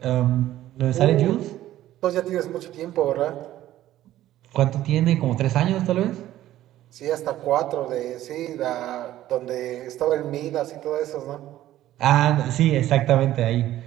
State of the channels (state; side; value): quieter; left; 13.8 dB